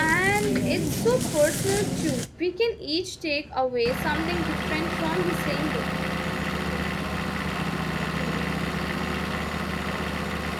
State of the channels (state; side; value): identical; both; correlation 1.00